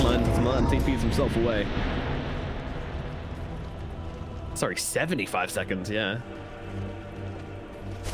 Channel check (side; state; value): both; identical; correlation 1.00